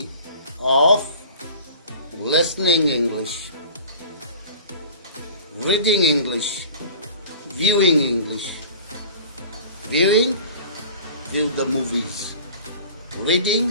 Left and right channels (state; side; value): inverted; both; correlation -0.43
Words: of listening English, reading English, viewing English. Viewing, view the movies.